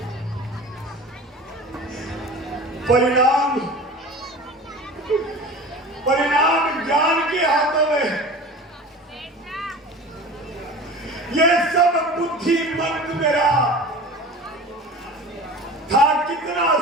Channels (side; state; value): both; normal; correlation 0.37